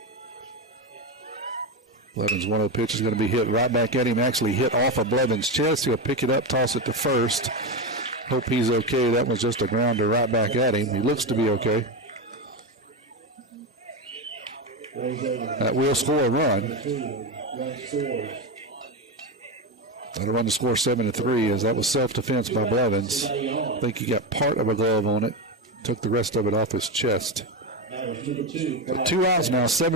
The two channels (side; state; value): both; normal; correlation 0.14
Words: Blevins' 1-0 pitch is going to be hit right back at him. Actually hit off of Blevins' chest. He'll pick it up, toss it to first. Hope he's okay. That was just a grounder right back at him. He looks to be okay. That will score a run. That'll run the score 7-3 as that was self-defense by Blevins. I think he got part of a glove on it. Took the rest of it off his chest. 2 outs now.